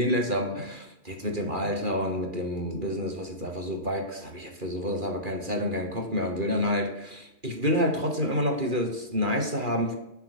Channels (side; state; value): left; late; 2.4 ms